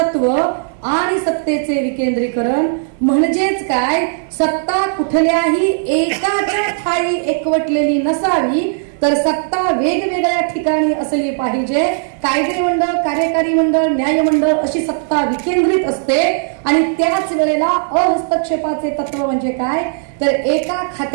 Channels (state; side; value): silent; left; 60 dB below the other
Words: आणि सत्तेचे विकेंद्रीकरण। म्हणजेच काय, सत्ता कुठल्याही एकाच्या ठाई एकवटलेली नसावी, तर सत्ता वेगवेगळ्या ठिकाणी असली पाहिजे। कायदे मंडळ, कार्यकारी मंडळ, न्याय मंडळ अशी सत्ता विकेंद्रित असते। आणि त्याच वेळेला अहस्तक्षेपाचे तत्व म्हणजे काय, तर एका